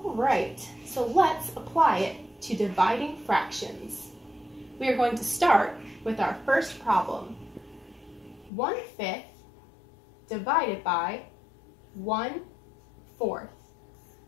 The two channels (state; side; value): drops out; right; at 8.5 s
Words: right, so let's apply it to dividing fractions. We are going to start with our first problem. 1/5 divided by 1/4.